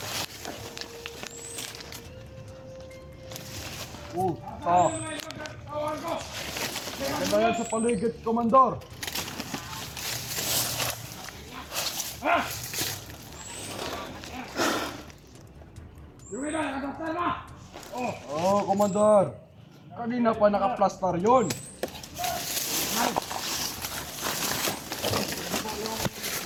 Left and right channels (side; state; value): both; identical; correlation 1.00